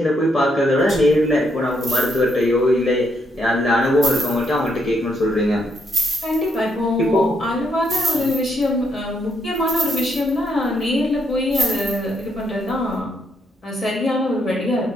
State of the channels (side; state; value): both; normal; correlation 0.76